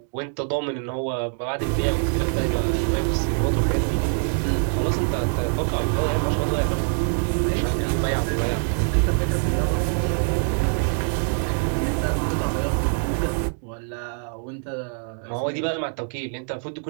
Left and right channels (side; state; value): left; silent; 57 dB below the other